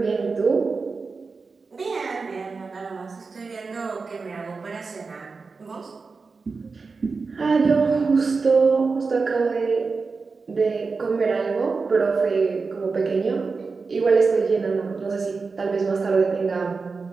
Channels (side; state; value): left; quieter; 4.5 dB